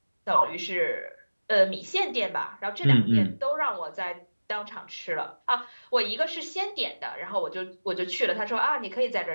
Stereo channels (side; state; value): both; inverted; correlation -1.00